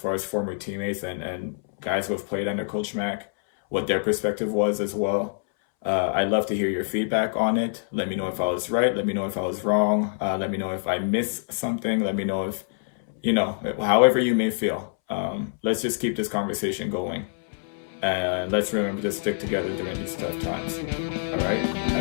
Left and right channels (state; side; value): silent; right; 61 dB below the other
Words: as former teammates and guys who have played under Coach Mack, what their perspective was as well. I'd love to hear your feedback on it. Let me know if I was right. Let me know if I was wrong. Let me know if I missed something. Let me know if, however you may feel. Let's just keep this conversation going. And let's remember to stick together during these tough times. All right?